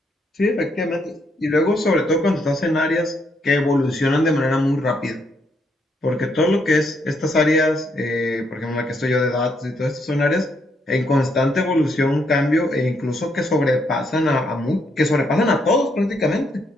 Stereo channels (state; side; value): normal; both; correlation 0.74